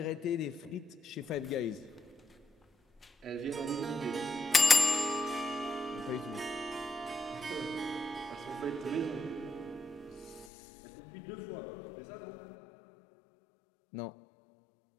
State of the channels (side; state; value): right; drops out; at 10.5 s